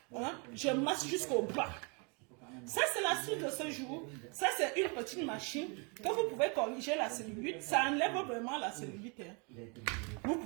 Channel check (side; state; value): left; quieter; 33.4 dB